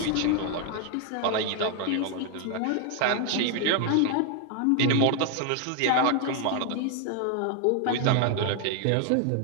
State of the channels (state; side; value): different; both; correlation 0.00